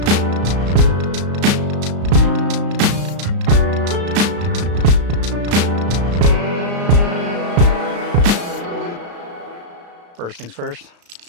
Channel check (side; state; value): left; late; 34 ms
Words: First things first.